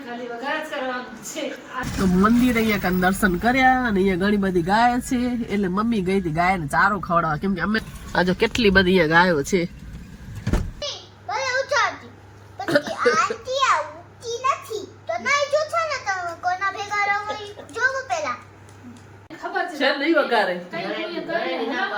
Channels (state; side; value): identical; both; correlation 1.00